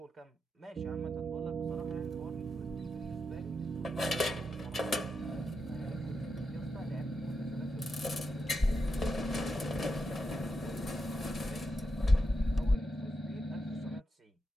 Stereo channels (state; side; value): normal; both; correlation 0.86